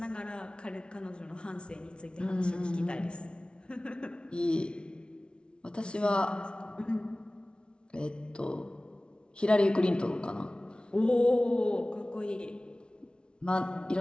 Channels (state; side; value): late; right; 0.057 ms